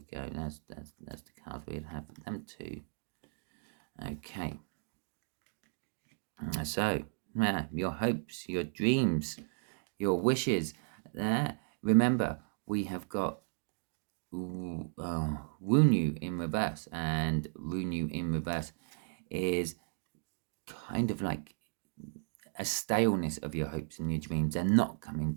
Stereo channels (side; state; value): left; silent; digital silence